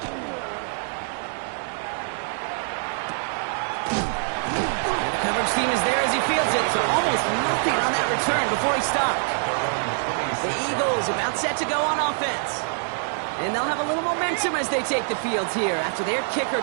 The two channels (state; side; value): silent; left; digital silence